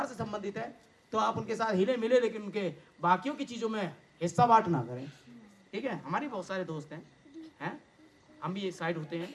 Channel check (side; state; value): both; identical; correlation 1.00